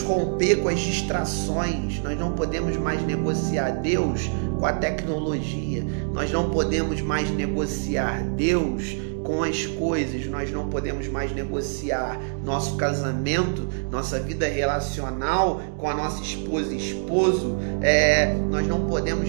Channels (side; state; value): left; silent; digital silence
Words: romper com as distrações. Nós não podemos mais negociar Deus com a tecnologia. Nós não podemos mais negociar Deus com as coisas. Nós não podemos mais negociar nosso casamento, nossa vida relacional com a nossa esposa e esposo. Nós não podemos